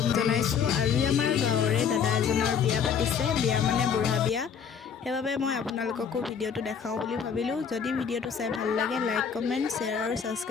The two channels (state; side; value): quieter; right; 7.1 dB